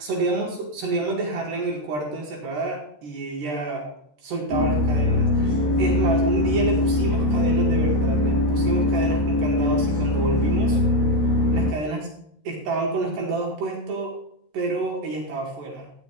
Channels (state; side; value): late; left; 13 ms